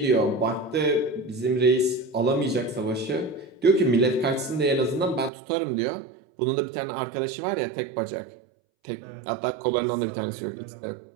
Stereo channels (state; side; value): drops out; left; at 5.3 s